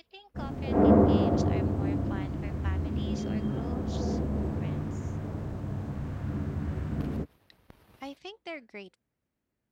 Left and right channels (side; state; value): both; identical; correlation 1.00